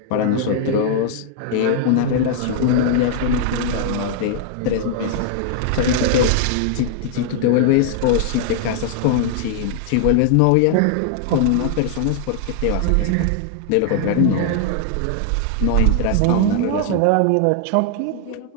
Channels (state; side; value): different; both; correlation 0.00